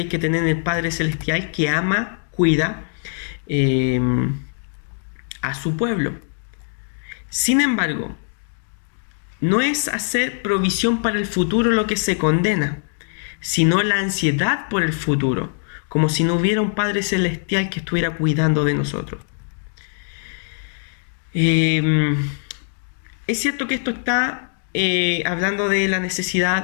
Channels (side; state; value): right; silent; digital silence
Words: hay que tener en el Padre Celestial, que ama, cuida a su pueblo. Sin embargo, no es hacer provisión para el futuro lo que se condena, sino la ansiedad por el futuro, como si no hubiera un Padre Celestial que estuviera cuidando de nosotros. Es cierto que esto está hablando de la